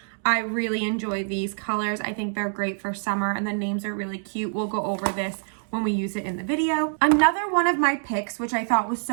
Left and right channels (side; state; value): left; silent; digital silence